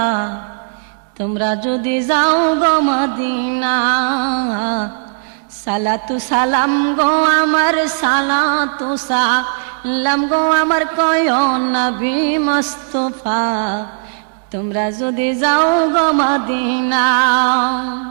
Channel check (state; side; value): silent; left; digital silence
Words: তোমরা যদি যাও গো মদিনা। সালাতু সালাম গো আমার, সালাতু সালাম গো আমার কয় নবী মুস্তাফা, তোমরা যদি যাও গো মদিনা।